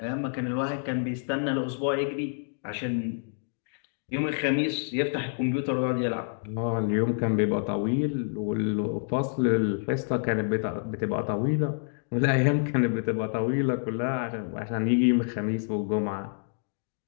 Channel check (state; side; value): silent; right; digital silence